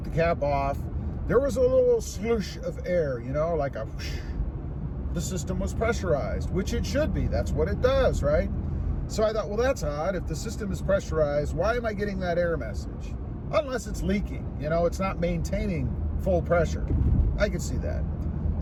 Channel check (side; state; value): both; identical; correlation 1.00